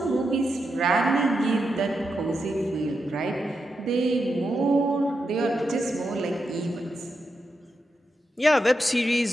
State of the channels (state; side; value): normal; both; correlation 0.86